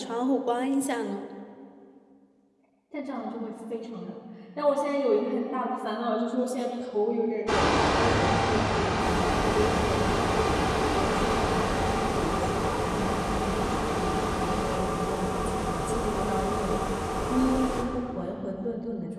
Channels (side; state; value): both; identical; correlation 1.00